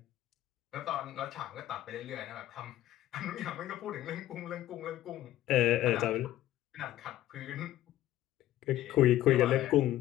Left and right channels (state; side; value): quieter; right; 14.0 dB